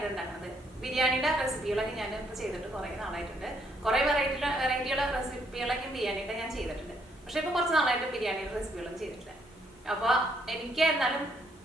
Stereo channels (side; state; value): both; normal; correlation 0.71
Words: ഉണ്ടാക്കുന്നത്. ബിരിയാണിയുടെ റെസിപ്പികളൊക്കെ ഞാൻ ഇപ്പോൾ ചെയ്തിട്ട് കുറേ നാളായിട്ടുണ്ട്. കുറേ വെറൈറ്റിയുള്ള റെസിപ്പികളൊക്കെ ബിരിയാണിയുടെ ഞാൻ ചെയ്തിട്ടുണ്ട്. പക്ഷെ ഇപ്പോൾ കുറച്ച് നാളായിട്ട് ബിരിയാണിയുടെ റെസിപ്പികളൊന്നും ചെയ്തിട്ടില്ല. അപ്പോൾ എനിക്ക് എന്നാലും